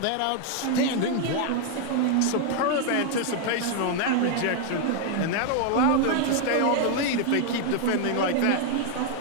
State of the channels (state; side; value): different; both; correlation 0.00